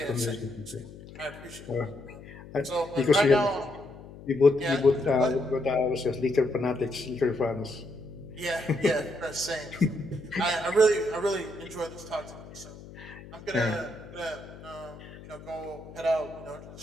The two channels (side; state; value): left; noise; hum, 16 dB below the sound